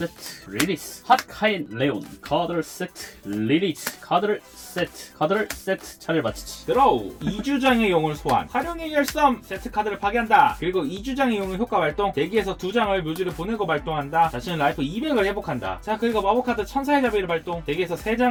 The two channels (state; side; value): identical; both; correlation 1.00